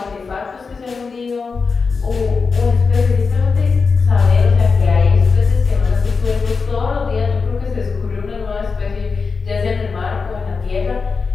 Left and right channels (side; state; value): right; quieter; 4.8 dB